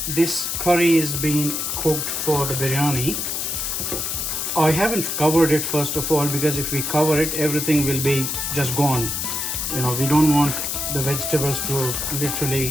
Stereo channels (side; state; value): left; noise; hiss, 2 dB below the sound